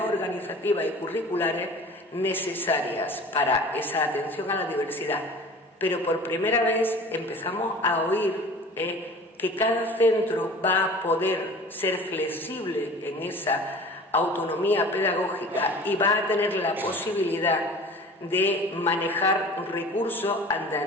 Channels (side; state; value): both; normal; correlation 0.42